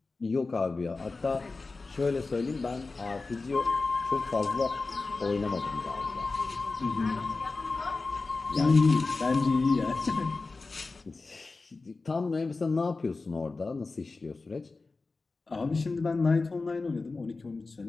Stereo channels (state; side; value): quieter; right; 3.8 dB